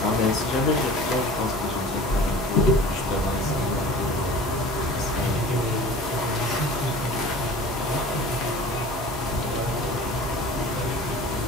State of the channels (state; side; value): normal; both; correlation 0.41